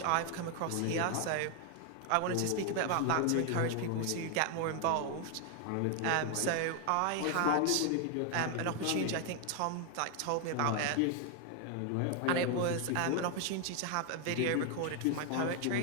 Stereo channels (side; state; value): both; different; correlation 0.00